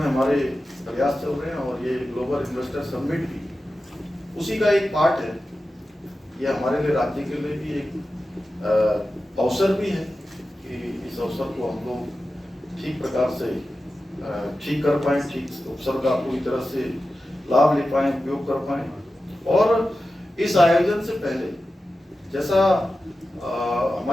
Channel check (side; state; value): both; normal; correlation 0.93